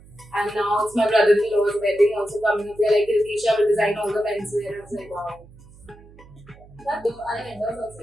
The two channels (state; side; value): noise; right; hum, 23 dB below the sound